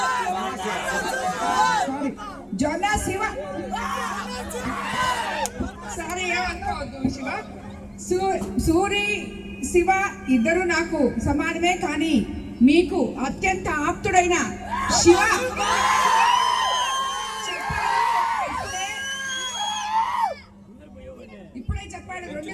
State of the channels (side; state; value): both; identical; correlation 1.00